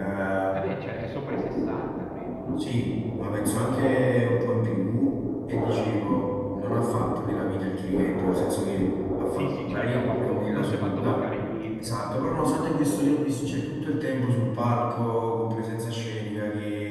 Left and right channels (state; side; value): identical; both; correlation 1.00